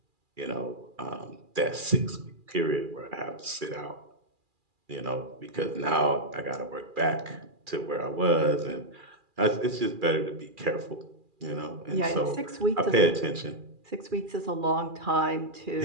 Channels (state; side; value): late; left; 2.4 ms